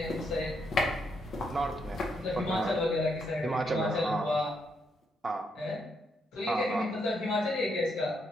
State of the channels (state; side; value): normal; both; correlation 0.77